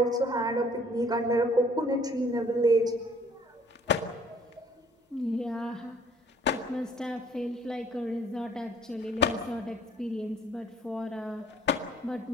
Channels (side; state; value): both; normal; correlation 0.57